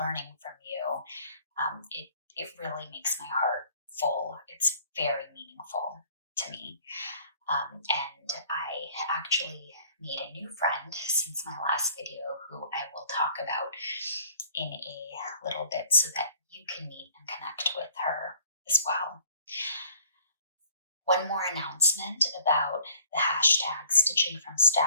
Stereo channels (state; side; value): inverted; both; correlation -0.56